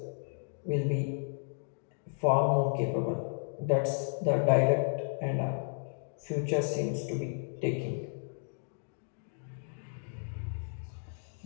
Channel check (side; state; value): right; silent; digital silence